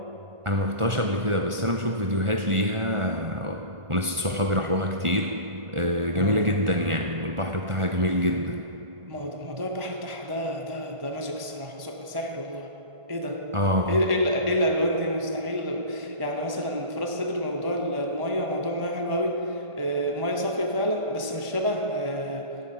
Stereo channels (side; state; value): left; late; 1.5 ms